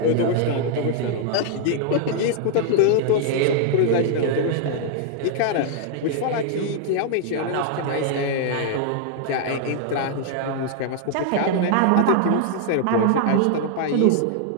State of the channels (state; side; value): different; both; correlation -0.01